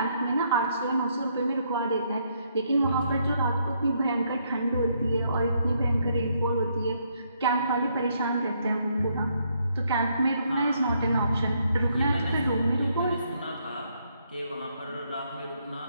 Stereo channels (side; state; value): both; inverted; correlation -0.73